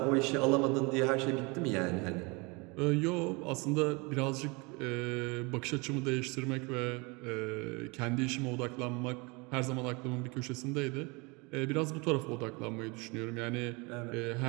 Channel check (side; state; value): left; quieter; 27.8 dB